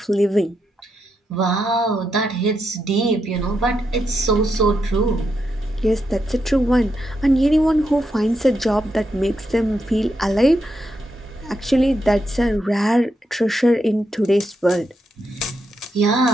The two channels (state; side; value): normal; both; correlation 0.83